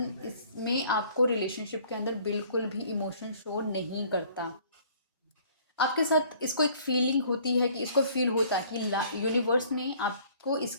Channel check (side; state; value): both; inverted; correlation -0.56